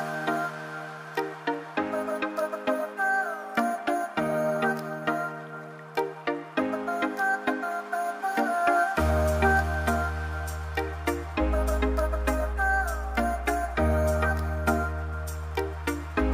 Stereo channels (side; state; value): both; identical; correlation 1.00